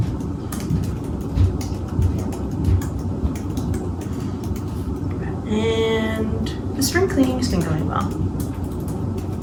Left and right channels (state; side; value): identical; both; correlation 1.00